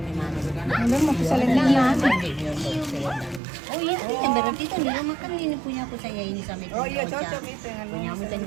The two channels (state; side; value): drops out; left; at 3.4 s